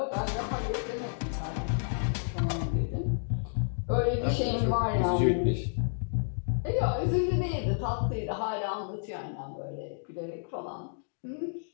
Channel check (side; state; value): right; silent; digital silence